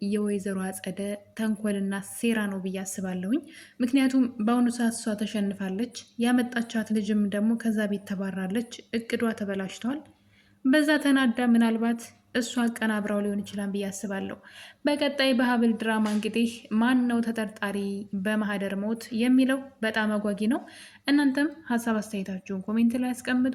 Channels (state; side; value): identical; both; correlation 1.00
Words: የወይዘሮ አጸደ ተንኮልና ሴራ ነው ብዬ አስባለሁኝ። ምክንያቱም በአሁኑ ሰዓት እሷ ተሸንፋለች፣ ያመጣቻት ልጅም ደግሞ ከዛ ቤት ተባራለች። እቅዷ ተበላሽቷል። በዛ ተናዳ ምናልባት እሷ አቀናብራው ሊሆን ይችላል ብዬ አስባለሁ። በቀጣይ በሀብል ድራማ እንግዲህ ማን ነው ተጠርጣሪ በማህደር ሞት የሚለው በጣም አጓጊ ነው። እናንተም ሀሳብ አስተያየታችሁን ኮሜንት ላይ አስቀምጡ።